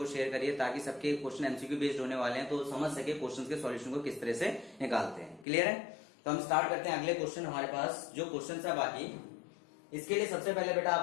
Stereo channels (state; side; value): drops out; right; at 5.5 s